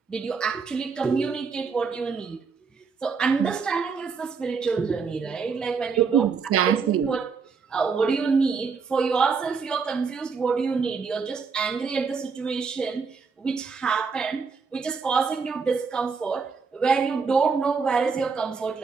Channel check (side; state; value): left; quieter; 5.3 dB